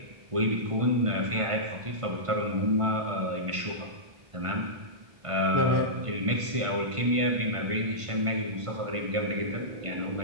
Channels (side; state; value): left; late; 1.5 ms